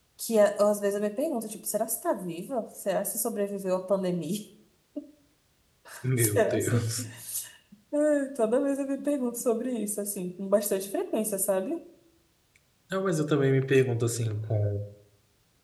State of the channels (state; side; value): identical; both; correlation 1.00